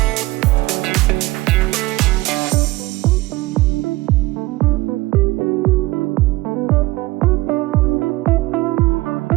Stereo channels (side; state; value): left; quieter; 19.5 dB